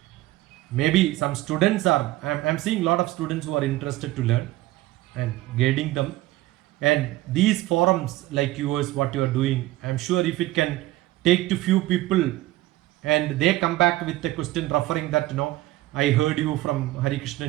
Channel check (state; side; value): quieter; left; 17.2 dB